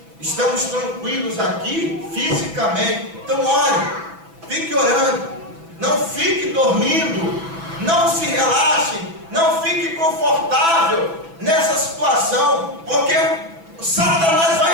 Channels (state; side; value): late; left; 6.0 ms